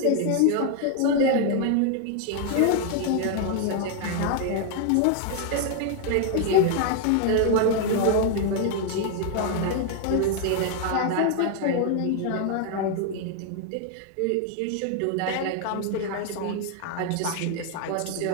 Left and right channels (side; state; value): both; different; correlation 0.00